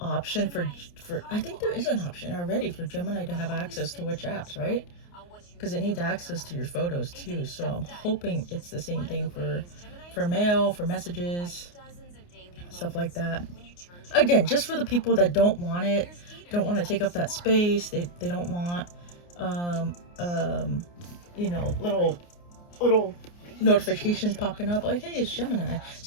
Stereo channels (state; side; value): late; right; 29 ms